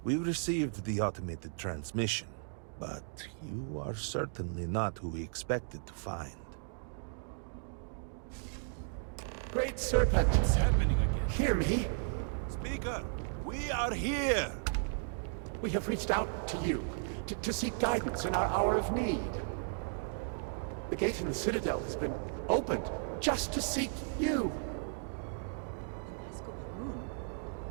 We received the automated transmission, but you are certainly not who we expected to find. Great Serpent! What's happening again? Hear me! Speaker, we are here! We have reached out to you to seek guidance in our hour of need. The gate in the Citadel has been opened just to seek you. Vasco Baroon,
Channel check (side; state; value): left; silent; digital silence